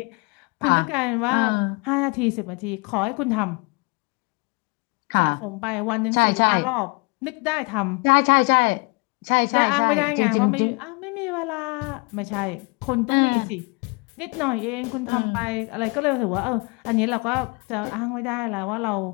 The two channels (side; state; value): right; quieter; 30.2 dB